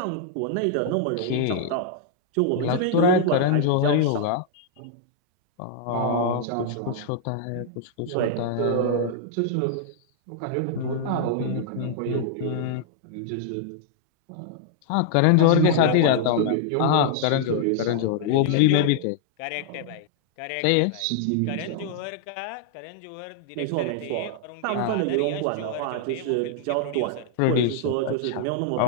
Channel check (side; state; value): both; different; correlation -0.01